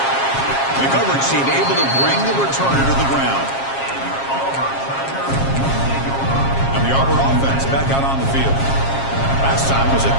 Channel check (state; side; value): late; right; 7.4 ms